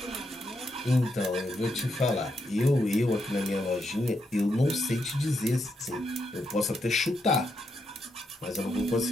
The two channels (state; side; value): normal; both; correlation 0.81